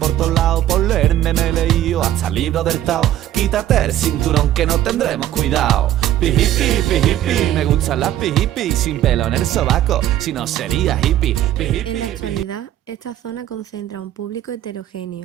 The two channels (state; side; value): quieter; left; 12.5 dB